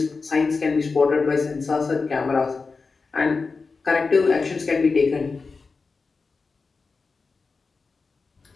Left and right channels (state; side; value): quieter; right; 4.4 dB